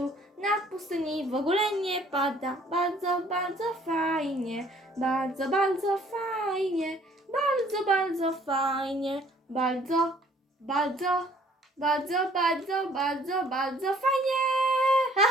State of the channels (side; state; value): both; normal; correlation 0.58